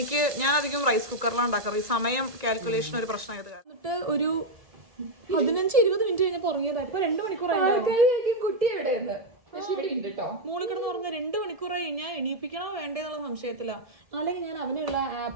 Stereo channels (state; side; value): late; left; 1.7 ms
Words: ഞാൻ അധികം റൈസ് കുക്കറിലാണ് ഉണ്ടാക്കാറ്. ഈ സമയം കാൽക്കുലേഷൻ ഒരു പ്രശ്നമായത്. എന്നിട്ട് ഒരു 15-20 മിനിറ്റ് കഴിഞ്ഞപ്പോ ഉറങ്ങിയതാ. ഇപ്പൊ 2 മണിക്കൂറായി. കുട്ടി എവിടെയെന്ന് മൂളി കിടന്ന് ഉറങ്ങ 2 മണിക്കൂറായി. ഞാൻ എണീപ്പിക്കണോ വേണ്ടേന്നുള്ള സംശയത്തില. അല്ലെങ്കിൽ ഞാൻ അവനുള്ള